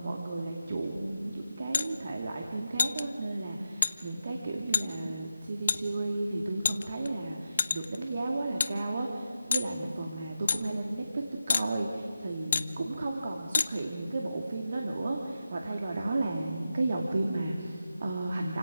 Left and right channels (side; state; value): both; inverted; correlation -0.90